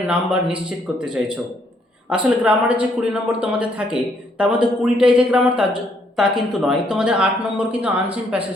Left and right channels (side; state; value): both; normal; correlation 0.70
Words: নাম্বার নিশ্চিত করতে চাইছো। আসলে গ্রামারের যে 20 নম্বর তোমাদের থাকে তার মধ্যে 20টাই যে গ্রামার তা কিন্তু নয়, তোমাদের 8 নম্বর কিন্তু আনসিন